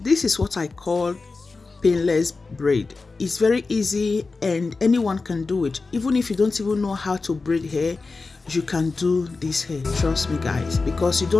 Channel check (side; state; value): right; quieter; 4.0 dB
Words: this is what I call painless braid. It's very easy and anyone can do it. Even if you don't even know how to braid hair, you can do this hair. Trust me, guys, because you